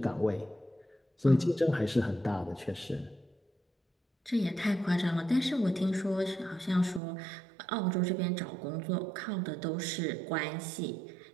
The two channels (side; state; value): left; drops out; at 7.0 s